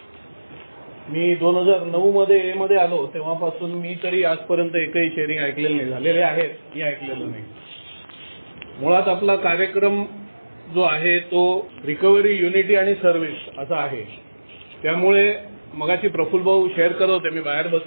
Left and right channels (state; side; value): inverted; both; correlation -1.00